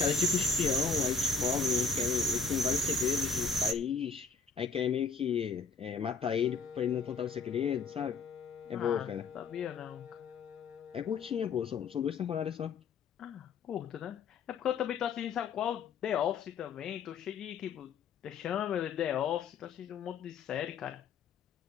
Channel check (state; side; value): quieter; right; 4.9 dB